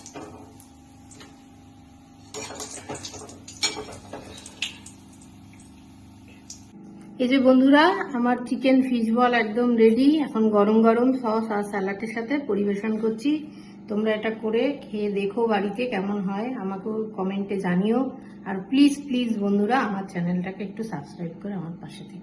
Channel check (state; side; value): identical; both; correlation 1.00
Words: এই যে বন্ধুরা, আমার চিকেন ফিশ বল একদম রেডি। এখন গরম গরম সস আর স্যালাডের সাথে পরিবেশন করছি। তোমরা এটা করে খেয়ে দেখো বাড়িতে কেমন হয়, আমাকেও কমেন্টে জানিও। আর প্লিজ প্লিজ বন্ধুরা, আমার চ্যানেলটাকে একটু সাবস্ক্রাইব করে আমার পাশে